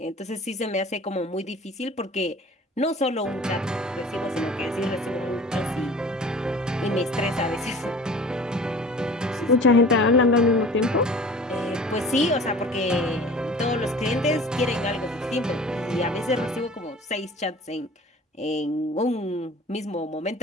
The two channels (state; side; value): normal; both; correlation 0.44